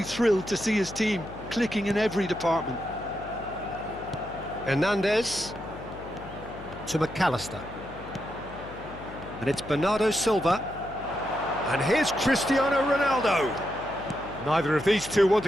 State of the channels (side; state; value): left; noise; hum, 15 dB below the sound